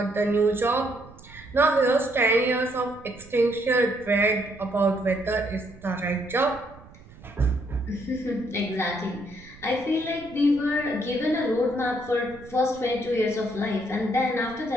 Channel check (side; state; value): right; noise; rumble, 21 dB below the sound